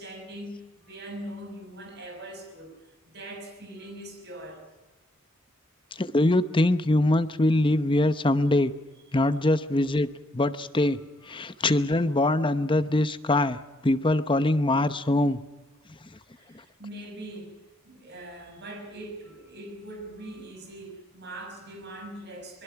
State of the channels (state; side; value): normal; both; correlation 0.73